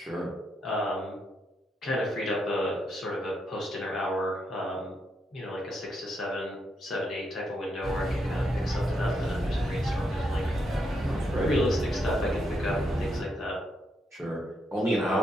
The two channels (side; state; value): both; normal; correlation 0.79